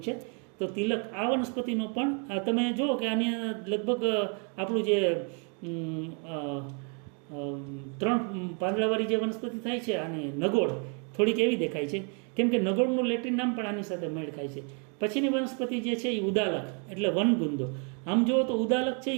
છે. તો તિલક આ વનસ્પતિનો પણ તમે જુઓ કે આની લગભગ આપણું જે 3 પાંદડાવાળી જે વનસ્પતિ થાય છે આની નગોળ થોડીક એવી દેખાય છે, કેમ કે નગોળનું લેટિન નામ પણ આની સાથે મેળ ખાય છે. પછીની વનસ્પતિ જે છે એ ઉદાલક એટલે વનગુંદો. આમ જુઓ તો ઉદાલક છે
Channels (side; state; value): left; quieter; 38.4 dB